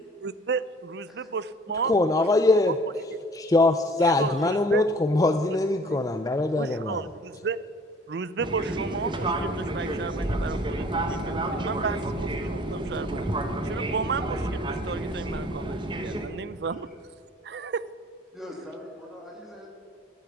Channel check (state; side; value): normal; both; correlation 0.52